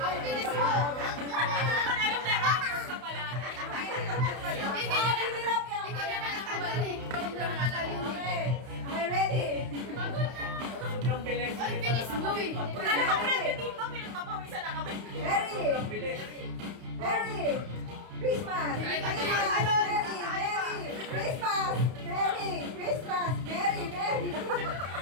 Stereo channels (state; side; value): late; left; 31 ms